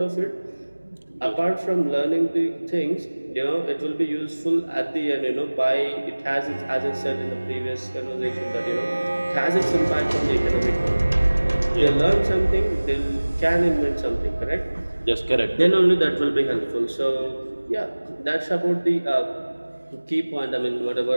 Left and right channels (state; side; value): inverted; both; correlation -1.00